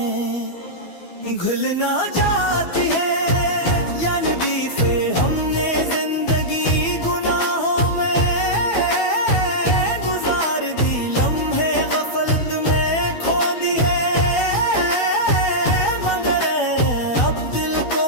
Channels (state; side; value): late; right; 12 ms